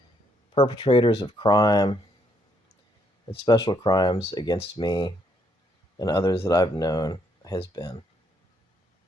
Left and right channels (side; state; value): both; normal; correlation 0.72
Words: perpetrators of crime and special crimes against me and others that I've known has been.